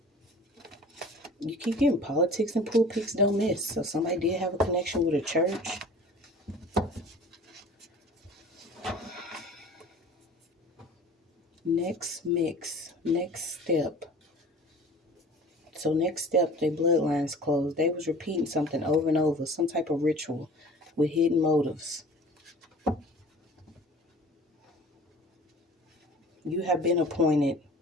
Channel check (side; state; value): both; normal; correlation 0.45